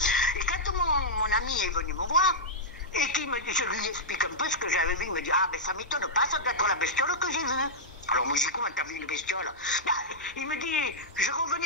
Et quand mon ami est venu me voir, et qu'il me dit, je lui explique un peu ce que j'avais vu, il me dit, ah ben ça m'étonne pas, ça doit être la bestiole que j'ai vue. Alors moi je dis, comment t'as vu une bestiole? Bah, il me dit, je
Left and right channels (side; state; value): both; normal; correlation -0.07